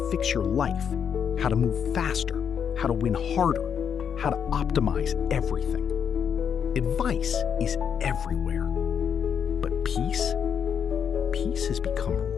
fix your life, how to move faster, how to win harder, how to optimize everything. Advice is everywhere. But peace? Peace has become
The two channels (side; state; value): right; quieter; 7.6 dB